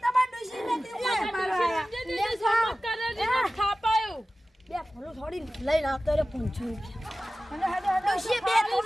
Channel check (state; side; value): normal; both; correlation 0.96